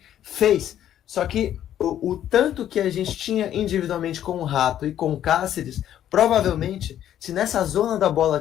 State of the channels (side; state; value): right; quieter; 11.1 dB